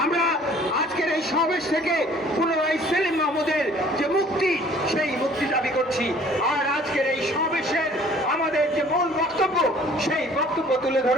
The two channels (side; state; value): both; normal; correlation 0.54